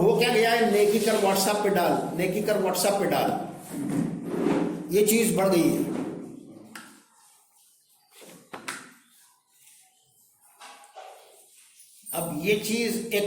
کیا گیا ہے, نیکی کر واٹس ایپ پہ ڈال, نیکی کر واٹس ایپ پہ ڈال, یہ چیز بڑھ گئی ہے. اب یہ چیز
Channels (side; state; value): both; identical; correlation 1.00